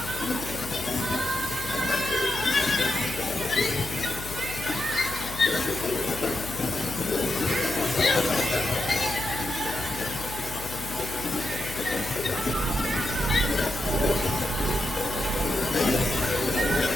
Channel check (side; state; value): left; noise; hum, 12 dB below the sound